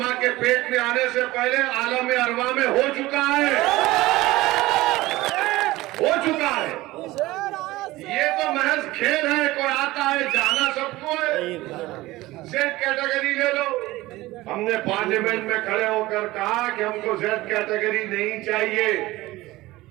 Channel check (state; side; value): quieter; left; 18.6 dB